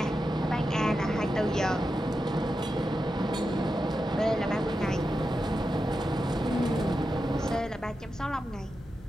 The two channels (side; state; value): both; normal; correlation 0.89